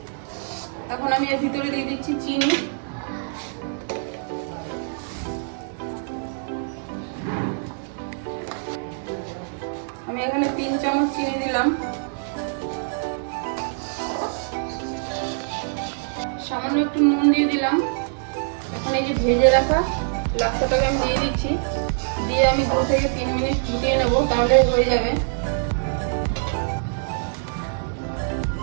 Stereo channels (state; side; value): silent; left; digital silence